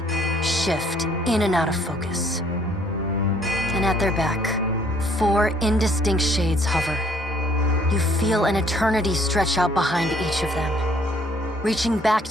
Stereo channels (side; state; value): both; normal; correlation 0.62